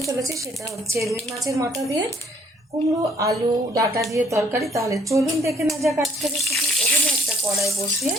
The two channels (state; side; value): normal; both; correlation 0.64